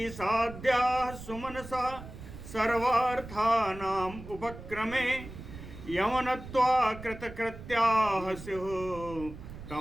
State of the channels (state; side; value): noise; right; rumble, 13 dB below the sound